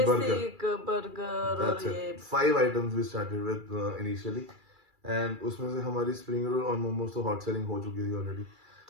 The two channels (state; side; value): late; left; 2.3 ms